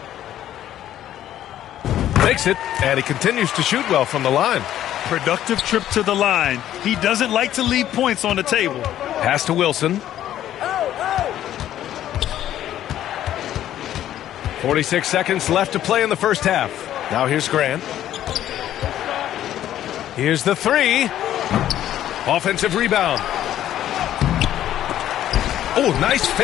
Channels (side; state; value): right; quieter; 12.0 dB